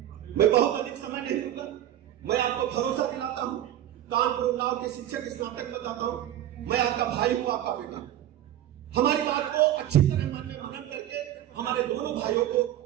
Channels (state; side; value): quieter; left; 12.2 dB